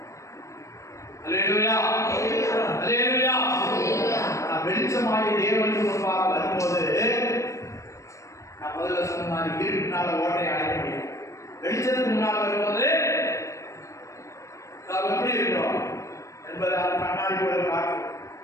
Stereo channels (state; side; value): late; right; 0.15 ms